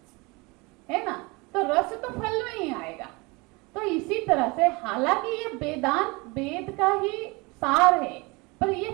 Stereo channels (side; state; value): left; quieter; 26.2 dB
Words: है ना। तो रस तो फल में ही आएगा। तो इसी तरह से हालांकि ये वेदांत वेद का ही सार है, पर ये